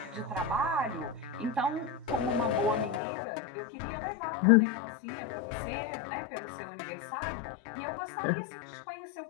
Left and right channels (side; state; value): right; drops out; at 3.0 s